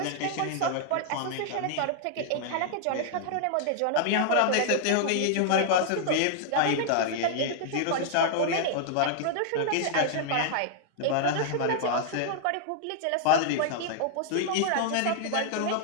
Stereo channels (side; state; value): both; different; correlation -0.01